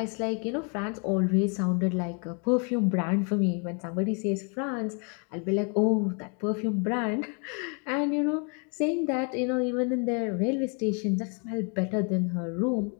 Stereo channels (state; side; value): quieter; right; 37.5 dB